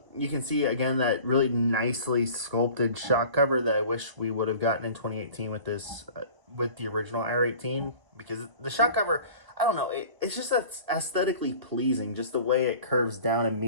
You can see again that really nicely sculpted shock cover that I wish we would have gotten in 2018 with this, with the original R18, because the shock cover, I don't know, it's just aesthetically pleasing, just the way it curves down and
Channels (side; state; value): left; late; 1.0 ms